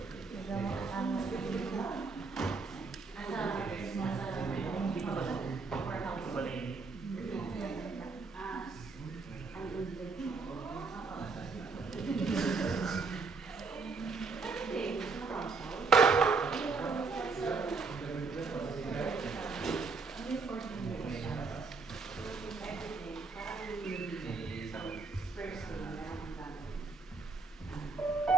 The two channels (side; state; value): left; quieter; 4.4 dB